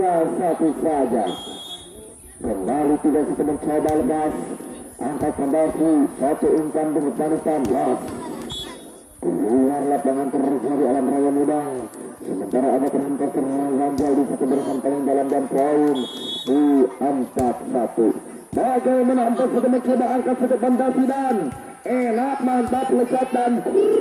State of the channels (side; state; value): both; identical; correlation 1.00